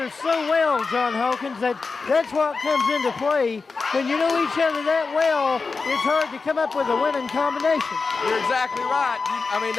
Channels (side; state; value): right; quieter; 4.4 dB